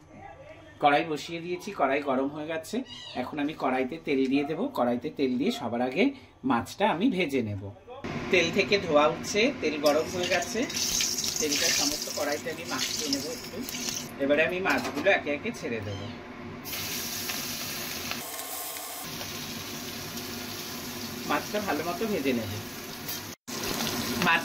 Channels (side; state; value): both; identical; correlation 1.00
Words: কড়াই গরম হয়ে গেছে। এখন আমি কড়াইতে তেল দিয়ে দেব। কড়াইতে তেল দিয়ে সবার আগে মাছটা আমি ভেজে নেব। তেল থেকে ধোয়া উঠছে, তেল গরম হয়ে গেছে। তেলটা সমস্ত কড়াইতে আমি মাখিয়ে নেব একটু। এবারে আমি মাছগুলো একে একে ছেড়ে দেব। মাছটা ভালো মতো ভেজে নেব।